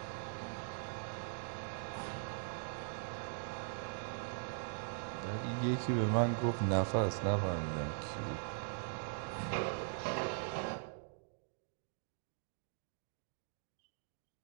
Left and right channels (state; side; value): silent; left; digital silence